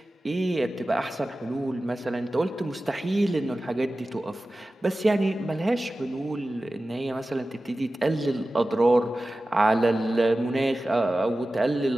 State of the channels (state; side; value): normal; both; correlation 0.95